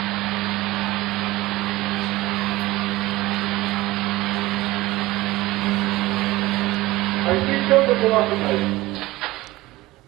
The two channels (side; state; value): left; quieter; 18.6 dB